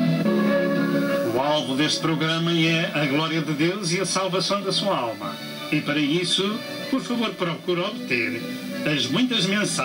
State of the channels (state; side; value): identical; both; correlation 1.00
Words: O alvo deste programa é a glória de Deus e a salvação da sua alma. E para isso, por favor, procure obter as muitas